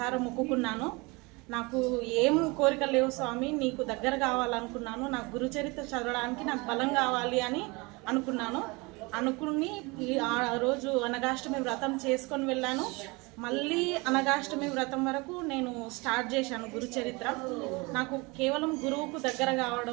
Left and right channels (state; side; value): quieter; left; 26.2 dB